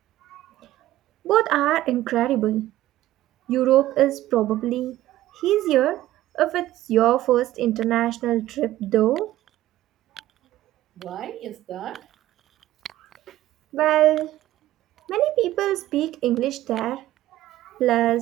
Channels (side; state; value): left; quieter; 14.9 dB